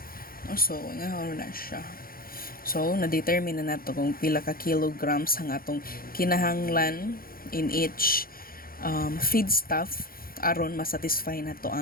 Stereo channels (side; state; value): right; late; 0.42 ms